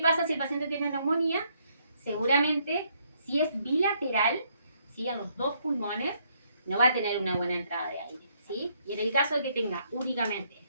si el paciente tiene neumonía? Seguramente, si es bilateral, ¿sí? A los dos pulmones, no va a tener una buena entrada de aire, ¿sí? Y en el caso de que tenga únicamente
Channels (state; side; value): inverted; both; correlation -0.71